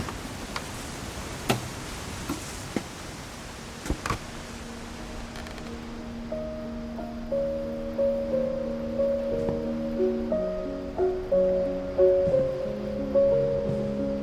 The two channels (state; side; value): identical; both; correlation 1.00